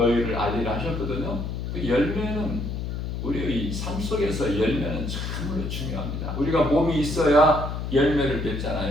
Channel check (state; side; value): noise; left; hum, 4 dB below the sound